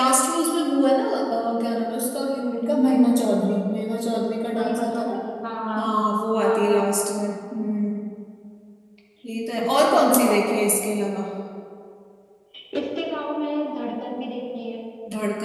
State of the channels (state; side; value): identical; both; correlation 1.00